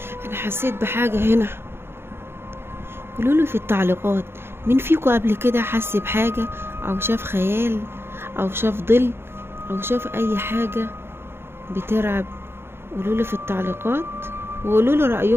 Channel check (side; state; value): left; late; 0.11 ms